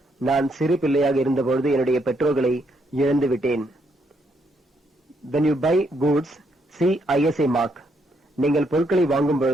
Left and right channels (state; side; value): normal; both; correlation 0.75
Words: நான் சிறு பிள்ளையாக இருந்த பொழுது என்னுடைய பெற்றோர்களை இழந்து விட்டேன். when you buy goods see ISA mark. நீங்கள் பொருட்களை வாங்கும்